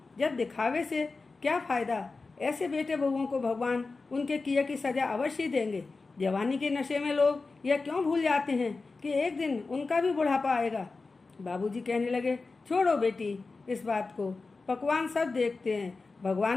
जब दिखावे से क्या फायदा, ऐसे बेटे बहुओं को भगवान उनके किए की सजा अवश्य देंगे। जवानी के नशे में लोग यह क्यों भूल जाते हैं कि एक दिन उनका भी बुढ़ापा आएगा। बाबूजी कहने लगे, छोड़ो बेटी इस बात को, पकवान सब देखते हैं,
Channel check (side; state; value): right; quieter; 3.9 dB